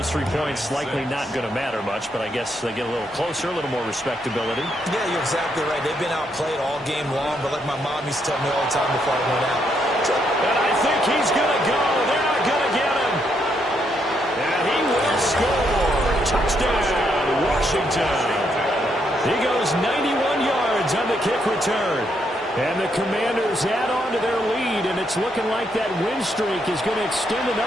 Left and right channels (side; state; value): both; normal; correlation 0.76